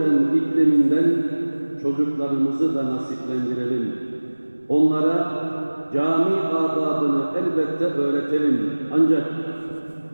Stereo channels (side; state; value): both; inverted; correlation -1.00